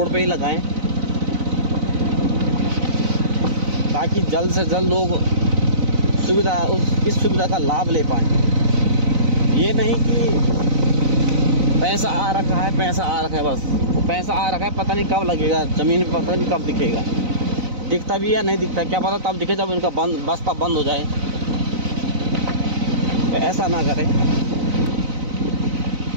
पे ही लगाएं, ताकि जल्द से जल्द लोग इस सुविधा का लाभ ले पाएँ। ये नहीं कि पैसा आ रखा है बस, वो पैसा आ रखा है, पता नहीं कब लगेगा ज़मीन पे, पता नहीं कब दिखेगा, दिखता भी या नहीं दिखता क्या पता, तब दिखे जब इनका बस्ता बंद हो जाए। तो ऐसा ना करें।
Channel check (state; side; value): late; left; 4.0 ms